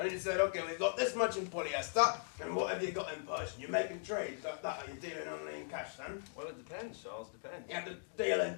he said, okay, we've got this much in polyester, and what have you got in Persian? You're making trades like that, are you dealing only in cash then? Well, it depends, Charles, depends. You have to deal in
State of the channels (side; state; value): right; silent; digital silence